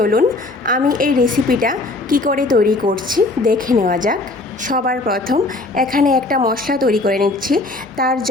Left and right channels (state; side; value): quieter; right; 3.0 dB